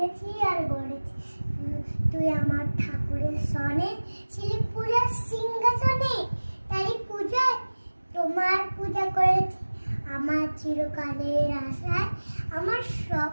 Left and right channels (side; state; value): both; inverted; correlation -1.00